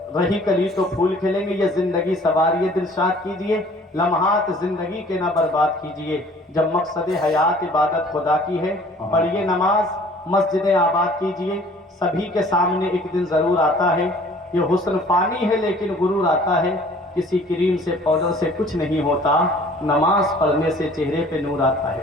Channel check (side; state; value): both; normal; correlation 0.52